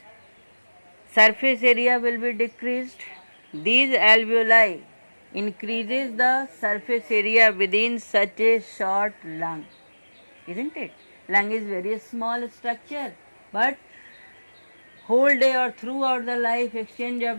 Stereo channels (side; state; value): both; inverted; correlation -1.00